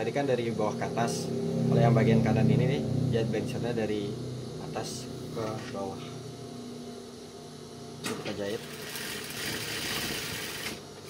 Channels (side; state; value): both; identical; correlation 1.00